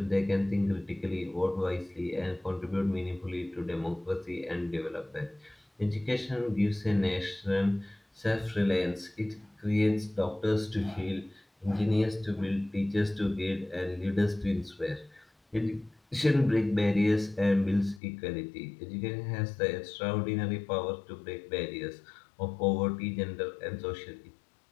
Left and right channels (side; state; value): right; drops out; at 18.0 s